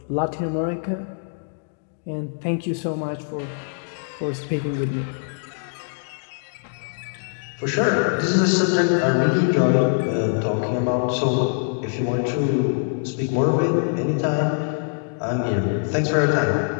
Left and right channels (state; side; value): silent; right; digital silence